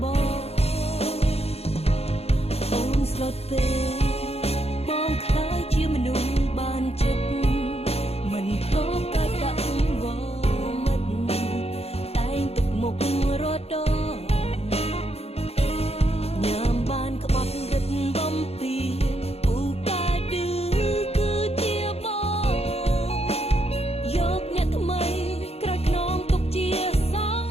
បងអូនស្លុតពេកបងខ្លាយជាមនុស្សបានចិត្តមិនធ្លាប់កាច់ដាក់វមិតតែងទុកមុខរត់ដងញ៉ាំបានក្បត់រិទ្ធបំពីពូកែឌឺគឺជាបងយកអ្នកថ្មីក្រោយខ្នងទុកជាសង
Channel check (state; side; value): late; right; 0.29 ms